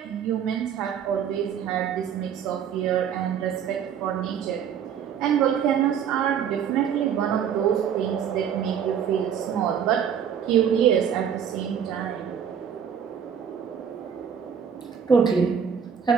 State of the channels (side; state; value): left; quieter; 8.1 dB